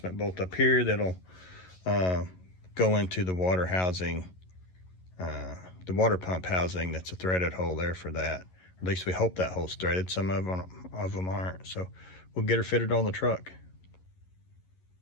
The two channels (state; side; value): late; right; 11 ms